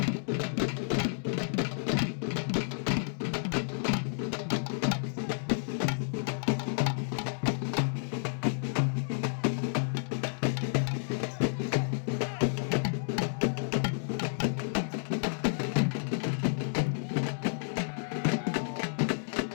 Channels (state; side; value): silent; right; digital silence